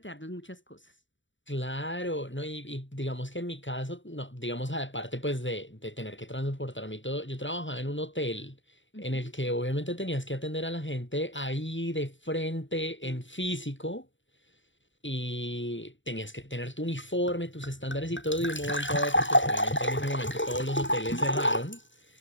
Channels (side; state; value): right; late; 0.55 ms